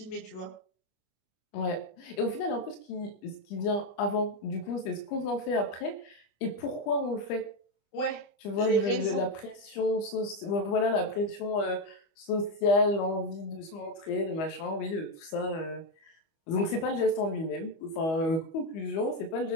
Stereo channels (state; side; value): late; right; 25 ms